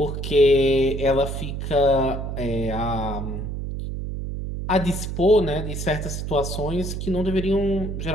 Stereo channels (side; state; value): right; noise; hum, 5 dB below the sound